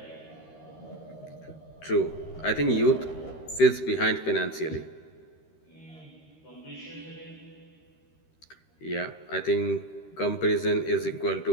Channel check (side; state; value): right; late; 13 ms